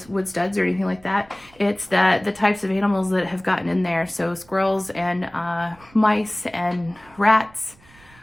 wood studs or anything like that. It's that the types of animals that have gotten in there. So squirrels and mice and rats.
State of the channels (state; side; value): noise; right; rumble, 27 dB below the sound